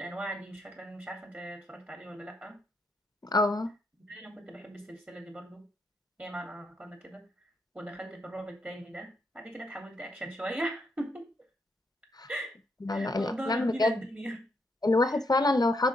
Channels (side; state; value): both; normal; correlation 0.77